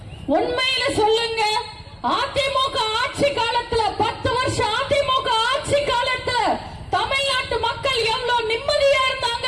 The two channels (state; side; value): identical; both; correlation 1.00